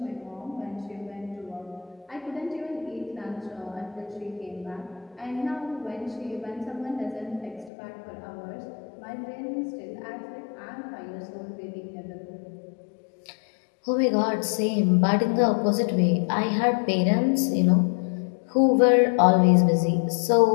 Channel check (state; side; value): drops out; right; at 7.7 s